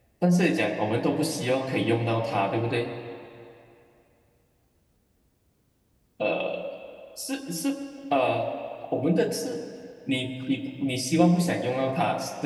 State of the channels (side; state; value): both; identical; correlation 1.00